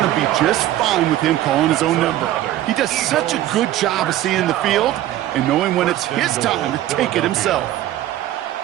to be just fine with him calling his own number. He does such a good job of seeing the field and knowing when it's his time to take it himself.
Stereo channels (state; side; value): quieter; left; 13.6 dB